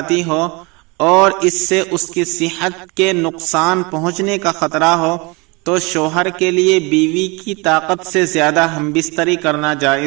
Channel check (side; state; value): left; quieter; 27.4 dB